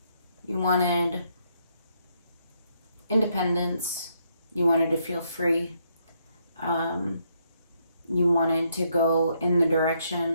You wanted independence. You wanted to feel free. You wanted to go in the direction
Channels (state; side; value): inverted; both; correlation -0.74